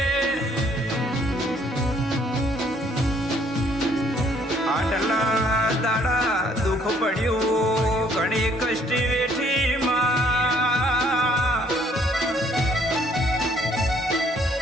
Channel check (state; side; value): normal; both; correlation 0.64